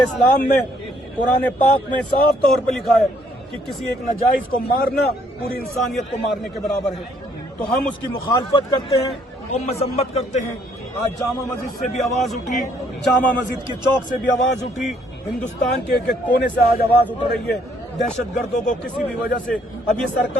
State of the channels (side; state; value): both; normal; correlation 0.66